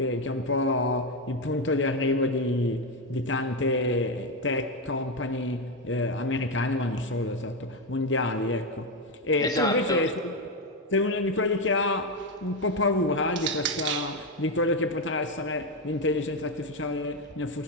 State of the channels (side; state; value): both; normal; correlation 0.09